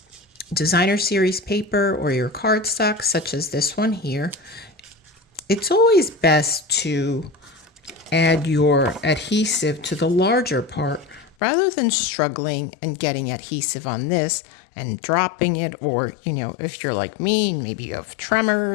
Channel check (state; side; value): drops out; right; at 11.4 s